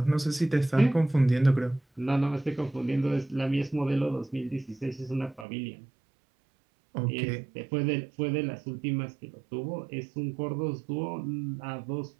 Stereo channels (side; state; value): left; drops out; at 5.5 s